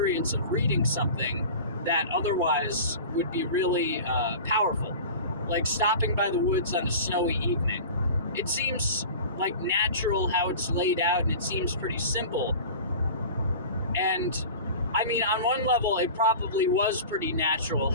of reading something that otherwise would be really powerful. Like stopping by the woods on a snowy evening. It seems like natural how it's laid out, and it seems pretty simple. And I mean, on one level, it probably was pretty natural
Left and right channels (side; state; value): both; inverted; correlation -0.37